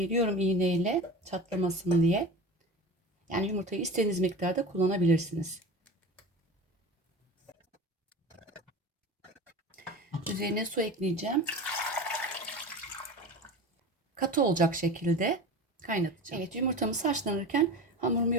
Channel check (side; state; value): both; normal; correlation 0.32